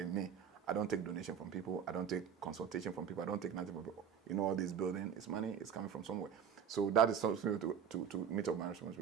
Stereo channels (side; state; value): left; quieter; 7.9 dB